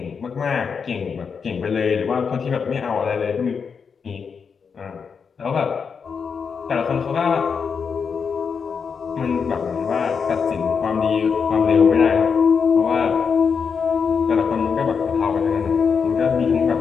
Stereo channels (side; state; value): right; quieter; 6.0 dB